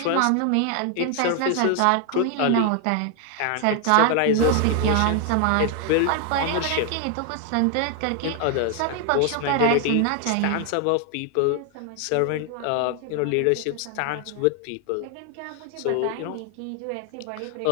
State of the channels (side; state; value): both; different; correlation 0.00